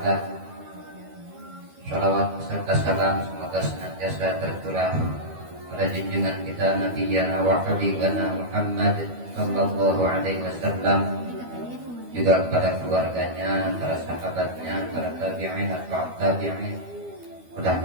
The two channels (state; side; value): late; left; 12 ms